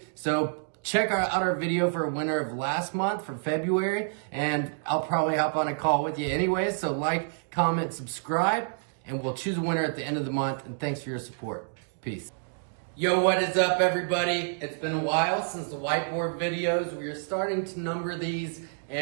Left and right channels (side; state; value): left; silent; digital silence